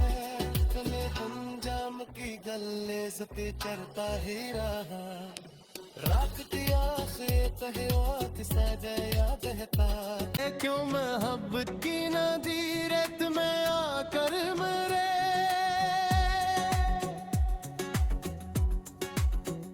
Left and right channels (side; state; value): both; identical; correlation 1.00